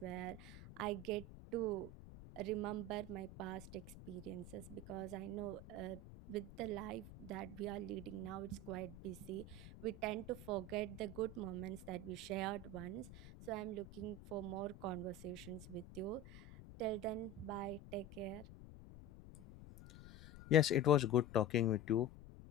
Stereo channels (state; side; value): noise; left; rumble, 15 dB below the sound